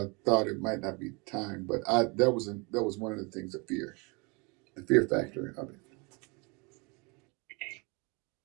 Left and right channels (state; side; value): quieter; left; 29.7 dB